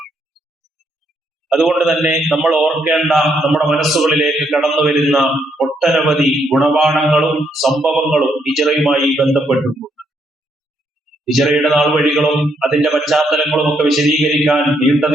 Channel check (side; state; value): both; normal; correlation 0.74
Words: അതുകൊണ്ട് തന്നെ നമ്മൾ ഓർക്കേണ്ട, നമ്മുടെ മനസ്സുകളിലേക്ക് കടന്നു വരുന്ന ഒട്ടനവധി ഗുണപാഠങ്ങളും സംഭവങ്ങളും ഹിജ്റയുമായി ബന്ധപ്പെട്ടിട്ടുണ്ട്. ഹിജ്റയുടെ നാൾവഴികളും അതിന്റെ പശ്ചാത്തലങ്ങളും ഒക്കെ വിശദീകരിക്കാൻ